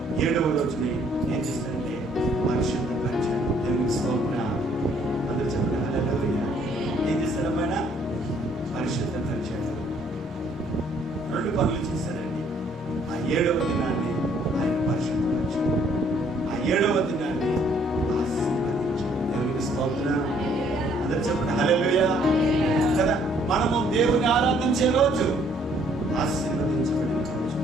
7వ రోజుని ఏం చేశాడంటే పరిశుద్ధపరిచాడు. దేవునికి స్తోత్రం. అందరూ చెప్పండి హల్లెలూయా. ఏం చేశాడమైనా? పరిశుద్ధపరిచాడు. 2 పనులు చేశాడండి. ఆ 7వ దినాన్ని ఆయన పరిశుద్ధపరిచాడు. ఆ 7వ దినాన్ని ఆశీర్వదించాడు. దేవునికి స్తోత్రం. అందరూ చెప్పండి హల్లెలూయా కదా. మనము దేవుని ఆరాధించే రోజు ఆశీర్వదించబడిన రోజు.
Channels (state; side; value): normal; both; correlation 0.64